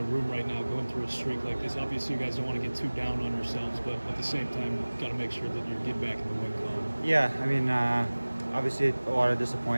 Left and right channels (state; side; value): inverted; both; correlation -1.00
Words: room right now going through a streak like this? Obviously, you guys don't want to get too down on yourselves, but at the same time, got to make sure that you get back in the win column. Yeah, I mean, obviously a lot of